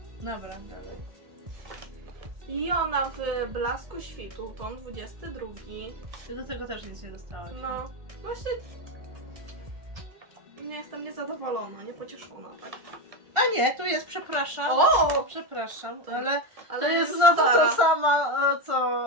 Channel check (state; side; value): late; left; 1.4 ms